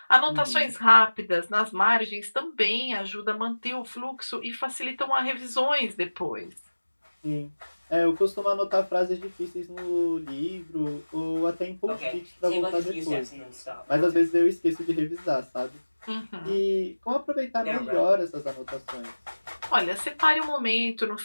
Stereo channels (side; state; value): both; inverted; correlation -1.00